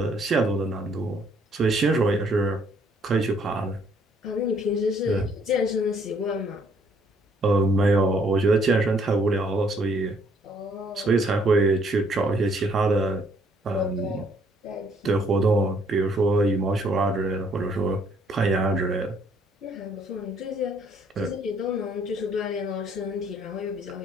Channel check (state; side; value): normal; both; correlation 0.66